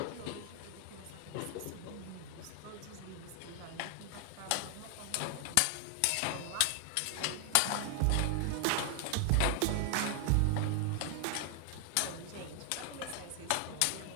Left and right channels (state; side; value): different; both; correlation 0.00